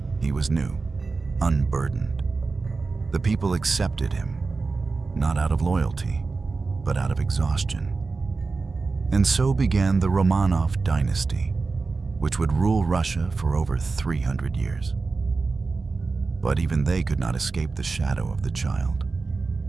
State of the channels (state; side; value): quieter; left; 4.1 dB